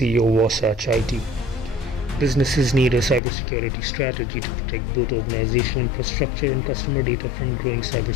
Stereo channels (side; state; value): right; drops out; at 3.2 s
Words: Wasatch IT. Businesses need a cybersecurity strategy to protect both organizational infrastructure and customer data from growing